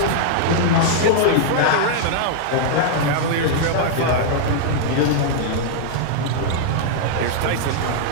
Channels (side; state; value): both; different; correlation -0.01